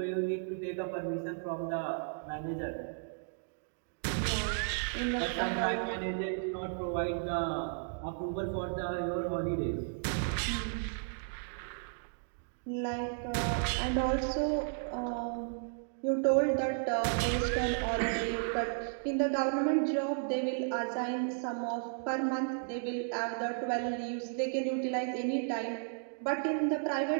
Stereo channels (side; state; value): left; silent; digital silence